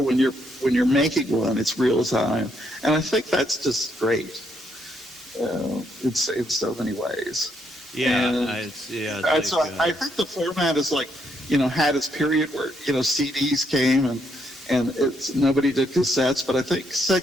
when you're making one, it's real time. And I think that's just great. It's in so many ways. Yeah. So I think the format is had its period where CDs came and nobody did cassettes, but I think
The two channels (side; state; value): both; normal; correlation 0.75